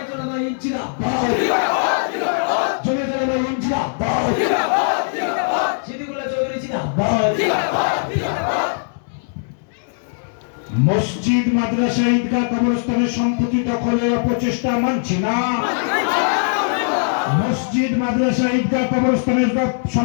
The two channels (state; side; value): silent; right; digital silence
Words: জিন্দাবাদ। জমিয়তুল জিন্দাবাদ। সিদ্দিকুল্লাহ চৌধুরী জিন্দাবাদ। মসজিদ, মাদ্রাসা, ঈদগাহ, কবরস্থানের সম্পত্তি দখলের অপচেষ্টা মানছি না। মসজিদ, মাদ্রাসা, ঈদগাহ, কবরস্থানের